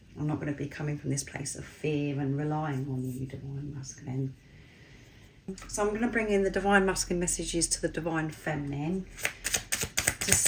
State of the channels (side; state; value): both; identical; correlation 1.00